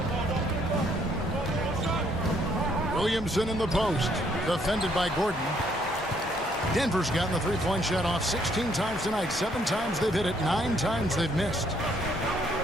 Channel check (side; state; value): both; normal; correlation 0.68